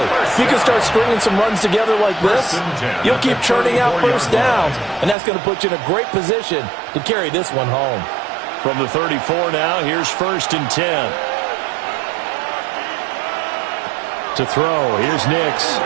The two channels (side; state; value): left; drops out; at 5.2 s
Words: If you can start stringing some runs together like this, you'll keep churning out first downs, and that's going to put you in a great position to carry this one home. From the 34 now, here's 1st and 10. To throw, here's Nix.